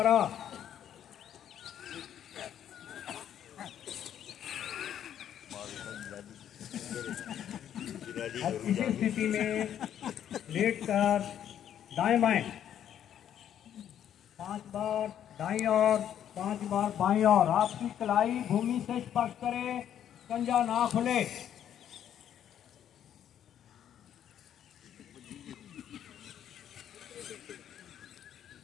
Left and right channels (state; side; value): quieter; right; 10.1 dB